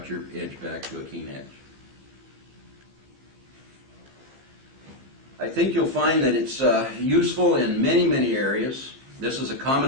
your edge back to a keen edge. I think you'll find that it's useful in many areas. This is a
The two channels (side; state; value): left; late; 15 ms